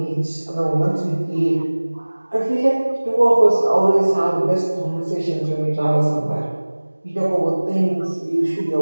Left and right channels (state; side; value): inverted; both; correlation -1.00